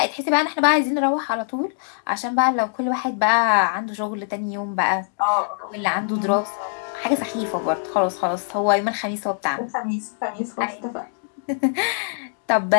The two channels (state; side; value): silent; right; digital silence